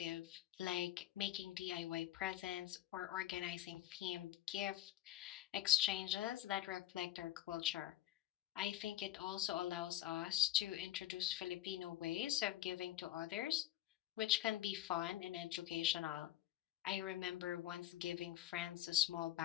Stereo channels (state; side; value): quieter; right; 13.7 dB